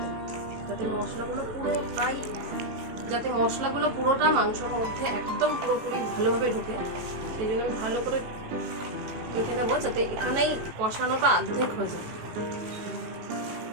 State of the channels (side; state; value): left; late; 18 ms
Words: যাতে মশলাগুলো পুরোটা মাংসের মধ্যে একদম পুরোপুরি ভালোভাবে ঢোকে। সেই জন্য আমি ভালো করে মেখে নেবো, যাতে এখানেই কষানোটা অর্ধেক হয়ে যায়।